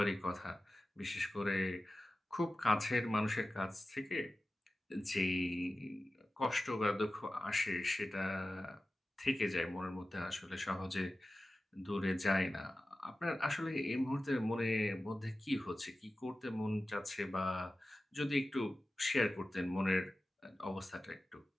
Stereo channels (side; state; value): both; normal; correlation 0.95